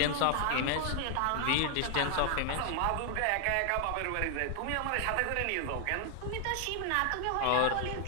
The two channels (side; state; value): both; different; correlation 0.00